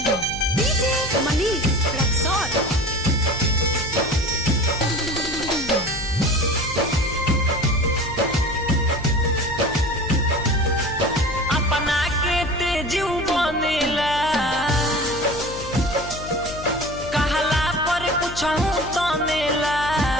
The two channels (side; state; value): left; noise; hum, 12 dB below the sound